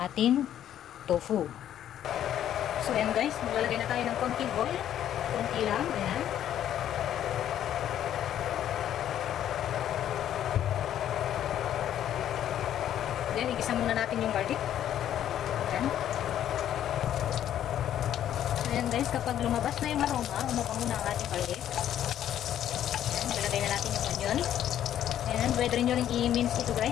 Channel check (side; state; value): right; quieter; 10.9 dB